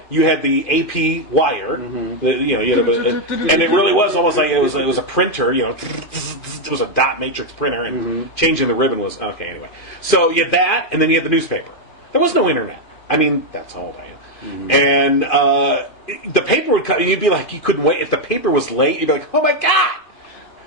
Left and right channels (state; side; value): late; right; 2.5 ms